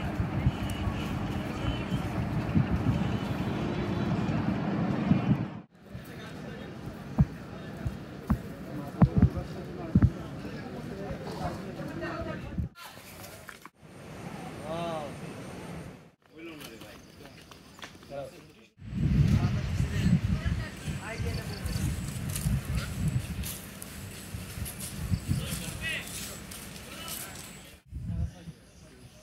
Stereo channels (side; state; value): both; identical; correlation 1.00